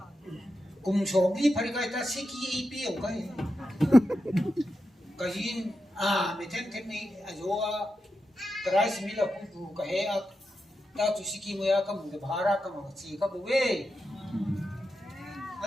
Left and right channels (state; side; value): normal; both; correlation 0.88